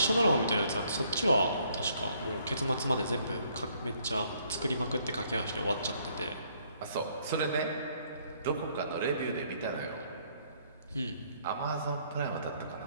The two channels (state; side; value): inverted; both; correlation -0.66